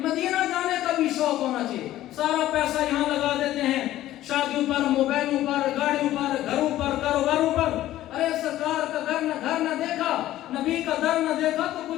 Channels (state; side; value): quieter; right; 14.2 dB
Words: مدینہ جانے کا بھی شوق ہونا چاہیے. سارا پیسہ یہاں لگا دیتے ہیں, شادیوں پر, موبائلوں پر, گاڑیوں پر, گھروں پر, کاروباروں پر. ارے سرکار کا گھر نہ دیکھا, نبی کا در نہ دیکھا تو